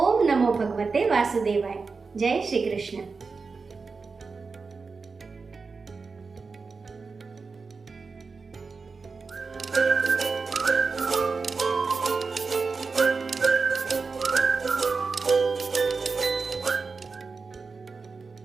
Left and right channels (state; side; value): quieter; left; 4.6 dB